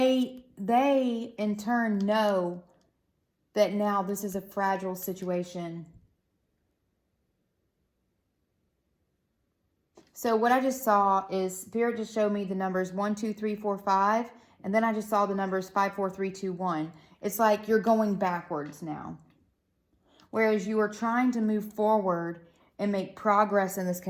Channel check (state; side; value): identical; both; correlation 1.00